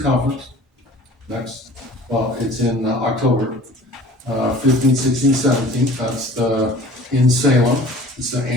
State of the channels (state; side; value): normal; both; correlation 0.46